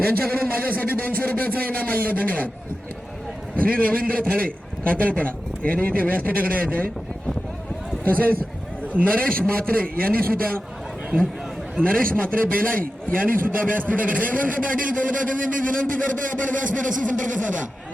यांच्याकडून माझ्यासाठी 200 रुपयाचा इनाम आलेला आहे. धन्यवाद. श्री रवींद्र थाळे कातळपडा यांनी इथे व्यासपीठाकडे यायचे. तसेच नरेश म्हात्रे यांनी सुद्धा, नरेश म्हात्रे बेलाई यांनी सुद्धा व्यासपीठाकडे. हेमंत पाटील कोलकात्याने मी विनंती करतो, आपण व्यासपीठाशी संपर्क साधा.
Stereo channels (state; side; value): normal; both; correlation 0.92